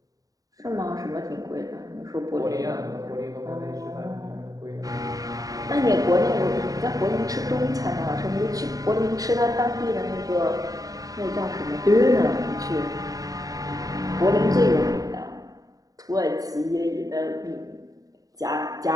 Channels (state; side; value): late; left; 0.18 ms